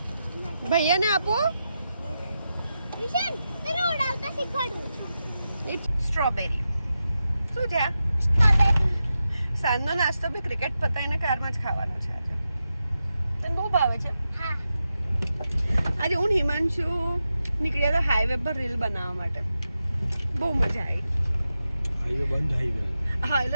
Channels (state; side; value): inverted; both; correlation -0.89